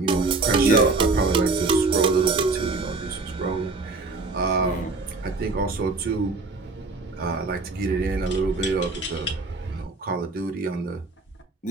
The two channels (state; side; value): quieter; left; 3.7 dB